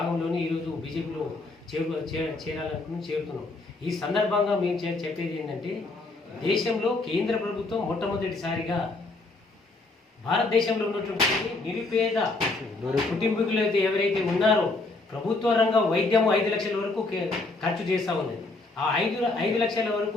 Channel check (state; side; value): quieter; right; 3.3 dB